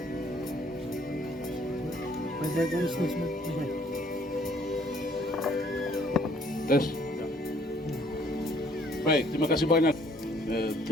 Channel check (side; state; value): both; normal; correlation 0.61